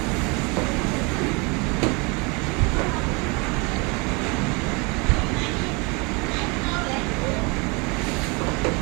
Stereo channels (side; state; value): left; quieter; 29.2 dB